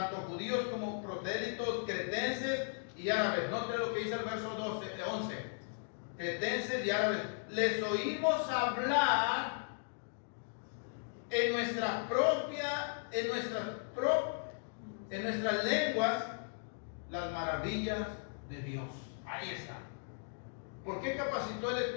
judíos como prosélitos, cretenses y árabes. Noten lo que dice el verso 11. Cretenses y árabes, les oímos hablar en nuestras lenguas las maravillas de Dios. Ahí está. ¿Por qué capacitó el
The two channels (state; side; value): silent; right; digital silence